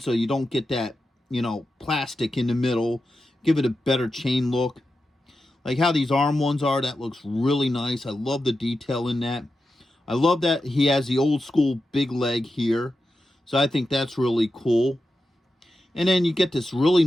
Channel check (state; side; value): normal; both; correlation 0.90